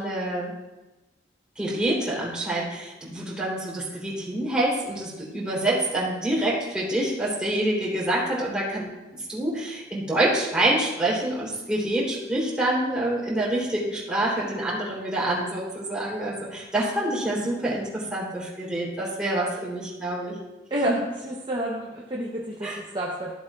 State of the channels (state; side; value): normal; both; correlation 0.52